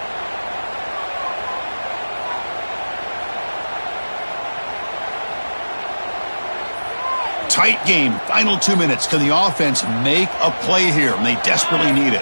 Tight game. Final 2 minutes. Can the offense make a play here? And they desperately need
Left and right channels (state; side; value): inverted; both; correlation -1.00